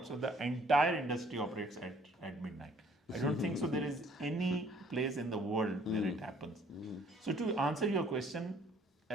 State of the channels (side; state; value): both; normal; correlation 0.59